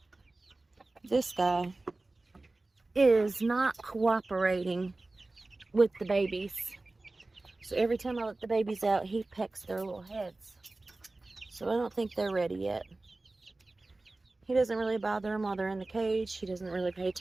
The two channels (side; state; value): left; quieter; 3.1 dB